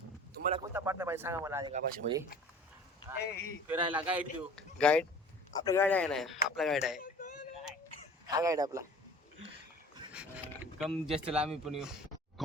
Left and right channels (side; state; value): both; normal; correlation 0.45